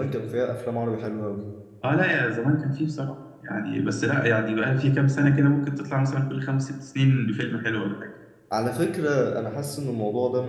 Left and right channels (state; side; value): identical; both; correlation 1.00